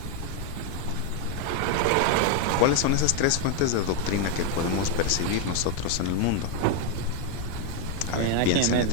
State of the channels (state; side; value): different; both; correlation 0.01